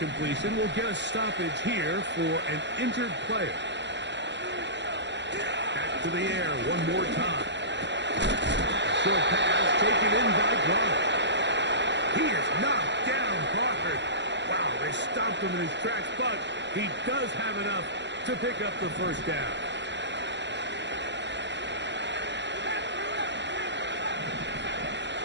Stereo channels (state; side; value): late; left; 0.52 ms